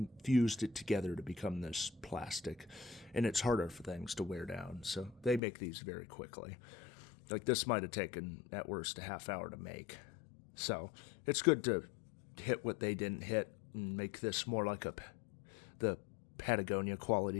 fused it together to become this plastic, and it's harder for things to wear down. So they make these very quickly. Like this might have taken at worst a half hour to make. So it's good to hit what they didn't hit and make this more like the Patagonia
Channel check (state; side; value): drops out; right; at 5.4 s